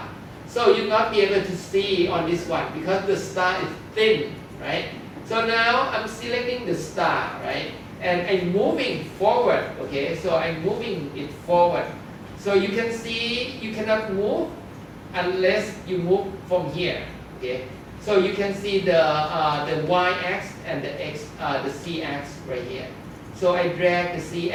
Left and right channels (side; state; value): both; identical; correlation 1.00